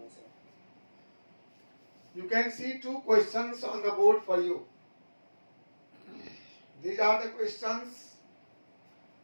sir. You can see two questions on the board for you. These are the questions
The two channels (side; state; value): both; inverted; correlation -1.00